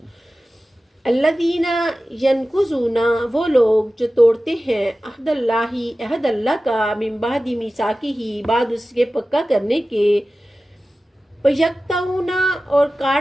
الذین ینقضون وہ لوگ جو توڑتے ہیں عہد اللہ عہد اللہ کا من بعد میثاقہ بعد اس کے پکا کرنے کے. وَيَقْطَعُونَ اور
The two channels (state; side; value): normal; both; correlation 0.95